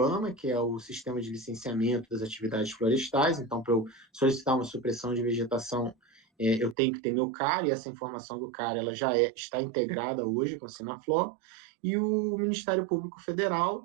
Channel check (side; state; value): left; drops out; at 6.8 s